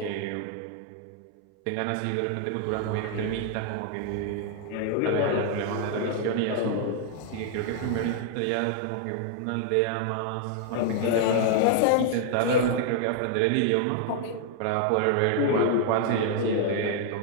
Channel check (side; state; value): both; different; correlation -0.01